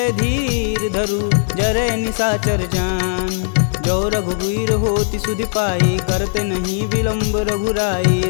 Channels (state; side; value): silent; right; digital silence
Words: धीर धरु जरे निशाचर जान जो रघुवीर होति सुधि पाई करते नहीं विलम्ब रघुराई